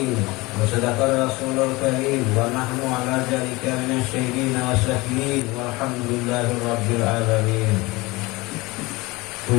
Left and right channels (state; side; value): quieter; right; 22.7 dB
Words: wa sadaqa rasulul karim wa nahnu ala dzalika minasyahidin wa syakirin walhamdulillahi rabbil alamin.